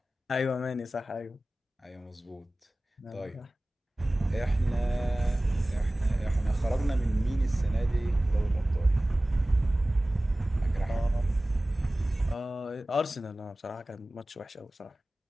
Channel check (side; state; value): both; normal; correlation 0.97